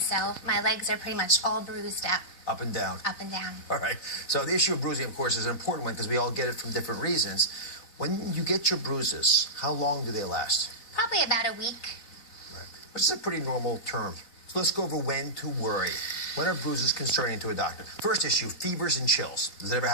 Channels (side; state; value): right; late; 4.1 ms